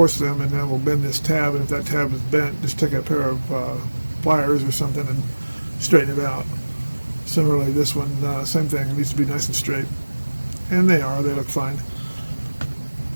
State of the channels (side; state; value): both; inverted; correlation -1.00